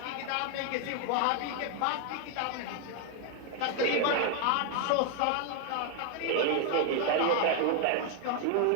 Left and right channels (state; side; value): different; both; correlation 0.00